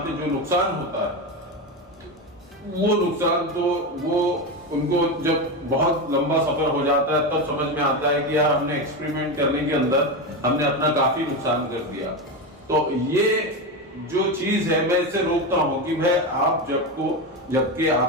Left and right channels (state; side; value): normal; both; correlation 0.16